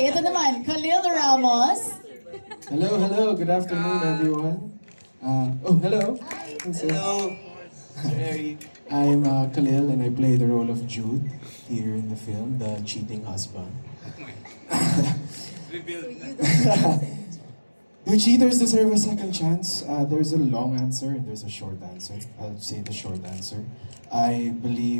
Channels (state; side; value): inverted; both; correlation -1.00